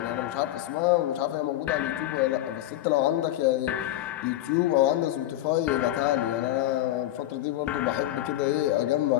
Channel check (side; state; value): right; quieter; 14.1 dB